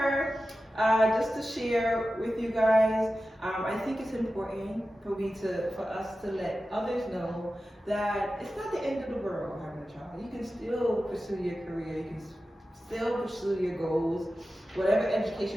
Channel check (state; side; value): normal; both; correlation 0.94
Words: just to share with you guys. I think it's important for us to let others know that it's not the end of the world having a child. You can still pursue your career. You can still pursue your goals, whatever